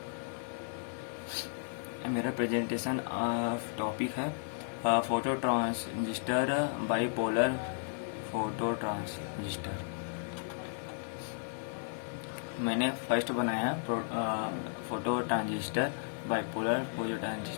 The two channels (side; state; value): right; silent; digital silence